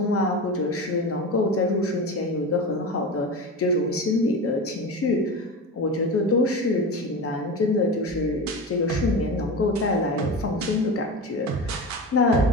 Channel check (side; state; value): both; normal; correlation 0.26